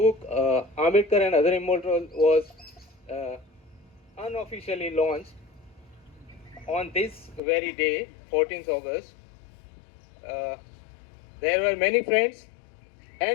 Ambedkar and Other Immortals was unofficially launched. On this very day, 14th August, there were many friends,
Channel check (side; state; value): right; drops out; at 7.4 s